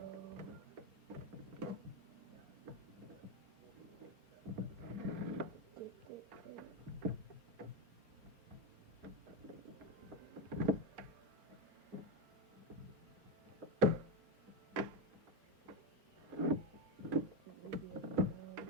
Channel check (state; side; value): late; left; 4.3 ms